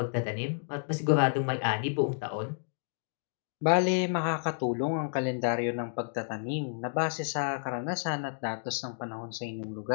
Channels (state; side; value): silent; right; digital silence